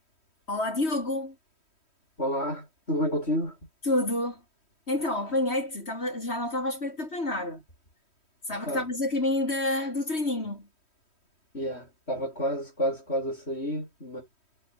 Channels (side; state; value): right; late; 3.1 ms